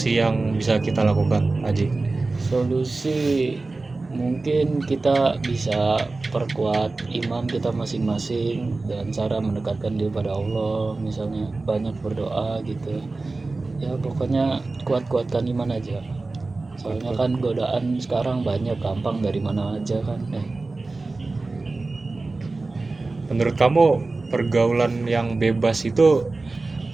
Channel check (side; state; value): left; quieter; 3.5 dB